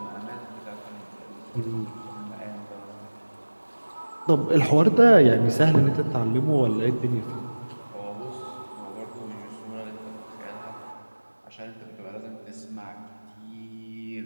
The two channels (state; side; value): inverted; both; correlation -1.00